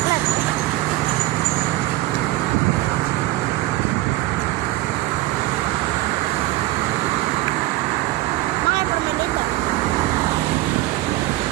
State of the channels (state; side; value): quieter; left; 17.7 dB